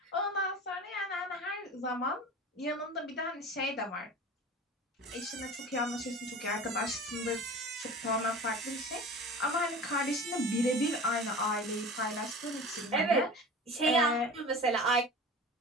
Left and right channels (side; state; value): both; normal; correlation 0.37